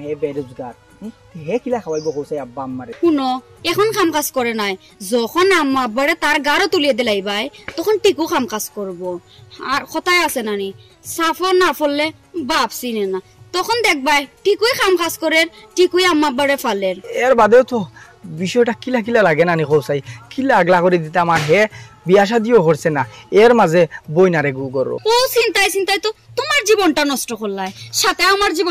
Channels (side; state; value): both; identical; correlation 1.00